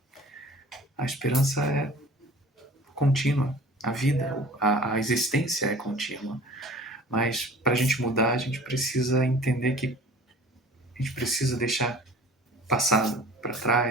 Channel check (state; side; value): normal; both; correlation 0.45